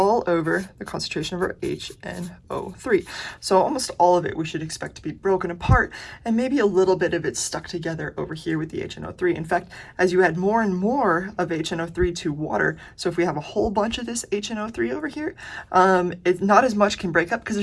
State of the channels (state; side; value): identical; both; correlation 1.00